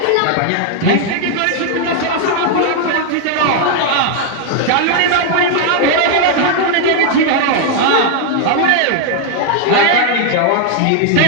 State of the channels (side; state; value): both; different; correlation 0.00